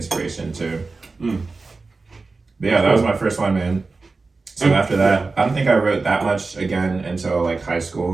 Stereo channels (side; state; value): left; quieter; 3.9 dB